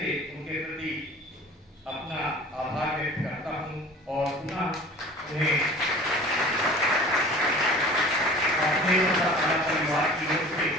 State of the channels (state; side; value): normal; both; correlation 0.43